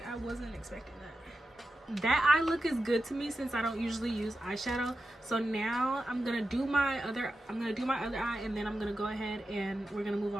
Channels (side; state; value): both; normal; correlation 0.91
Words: I wasn't expecting that. That eye look is good to me since I don't usually use eyeshadow. So now I'm gonna do my other eye, and then I'm gonna go ahead and we're gonna move